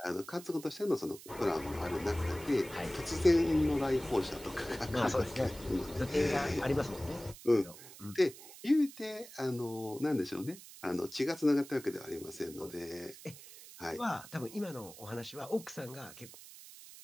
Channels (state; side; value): noise; right; hiss, 17 dB below the sound